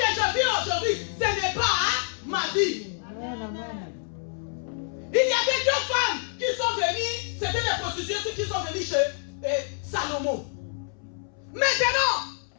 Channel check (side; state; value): right; silent; 60 dB below the other